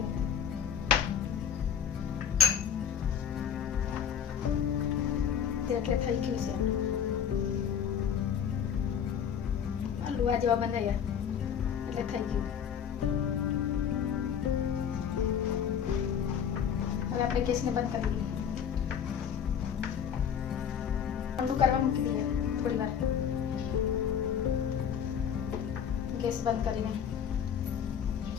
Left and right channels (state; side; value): quieter; right; 8.1 dB